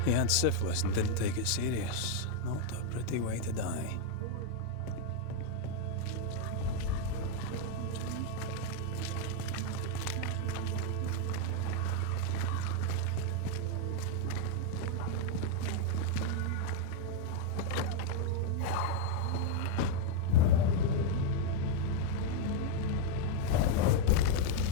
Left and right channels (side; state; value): both; different; correlation 0.00